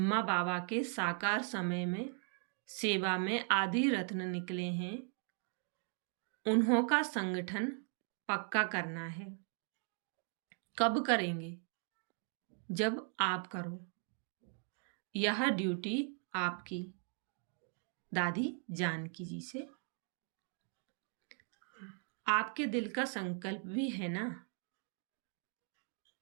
बाबा के साकार समय में सेवा में आदि रत्न निकले हैं, उन्हों का संगठन पक्का करना है। कब करेंगे? जब आप करो। यह ड्यूटी आपकी। दादी जानकी जी से। आपके दिल का संकल्प भी है ना,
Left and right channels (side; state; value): left; quieter; 38.5 dB